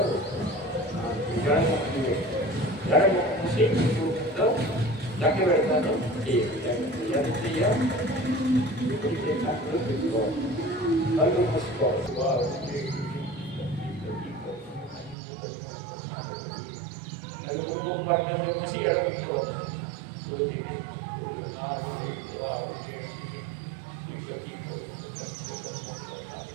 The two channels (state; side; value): drops out; left; at 15.2 s